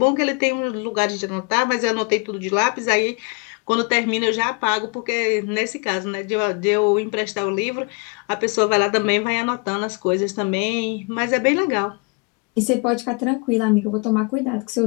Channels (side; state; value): right; quieter; 31.6 dB